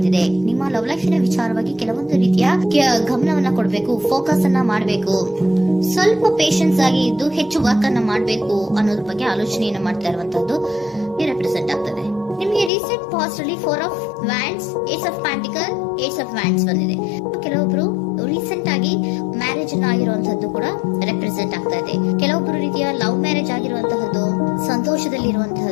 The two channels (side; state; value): right; drops out; at 12.7 s